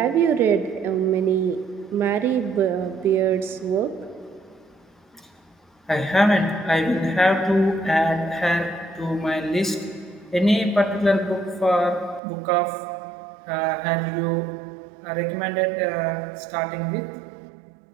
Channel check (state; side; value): drops out; left; at 12.2 s